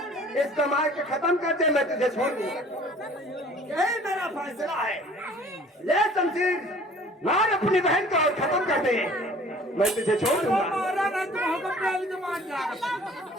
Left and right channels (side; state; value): both; normal; correlation 0.51